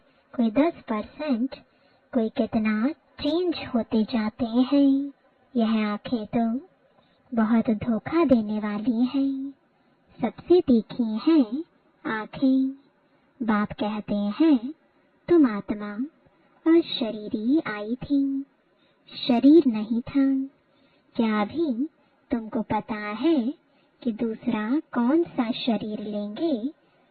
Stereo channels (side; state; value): both; identical; correlation 1.00